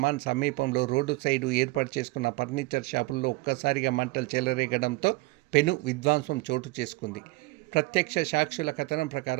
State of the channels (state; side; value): quieter; left; 22.2 dB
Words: సమీపంలో రోడ్డు సైడు ఏర్పాటు చేసుకున్న ఫర్నిచర్ షాపుల్లో ఒక్కసారిగా మంటలు చెలరేగడంతో పెను విధ్వంసం చోటు చేసుకుంది. ప్రత్యక్ష సాక్షుల కథనం